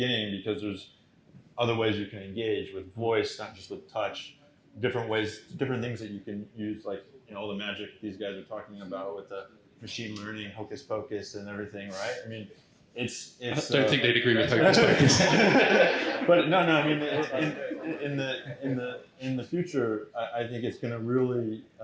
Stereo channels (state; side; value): identical; both; correlation 1.00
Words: because there's other ways you can engage with voice, not just with touch. Different ways, different things that you can use, like all the magic these guys are talking about with the machine learning, hocus pocus, and everything, right? I mean, it's. I don't think they'd agree with hocus pocus. But no. I mean, in the future, I think it's going to really